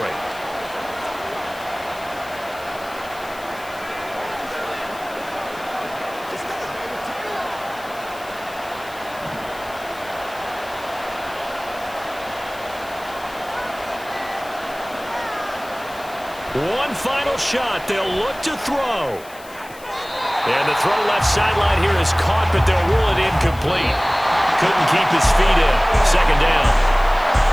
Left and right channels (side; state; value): left; noise; hiss, 20 dB below the sound